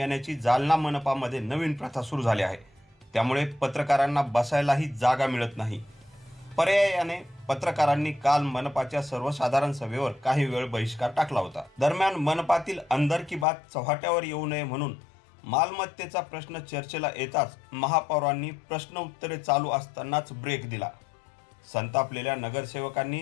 जालना मनपामध्ये नवीन प्रथा सुरू झाली आहे। त्यामुळे पत्रकारांना बसायलाही जागा मिळत नाही। पर्यायाने पत्रकारांनी काल मनपाच्या सर्वसाधारण सभेवर काही वेळ बहिष्कार टाकला होता। दरम्यान मनपातील अंदर की बात चव्हाट्यावर येऊ नये म्हणून मालमत्तेचा प्रश्न चर्चेला येताच महापौरांनी प्रश्न उत्तरे चालू असतानाच ब्रेक दिला। संतापलेल्या नगरसेवकांनी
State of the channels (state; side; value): drops out; right; at 13.5 s